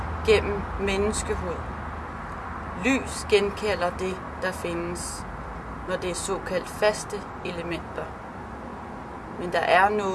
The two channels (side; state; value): both; identical; correlation 1.00